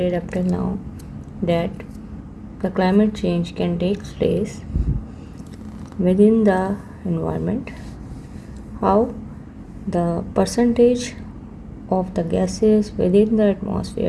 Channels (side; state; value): both; identical; correlation 1.00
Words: up till now that the climate change can take place within the environment, how the percentage of the gases within the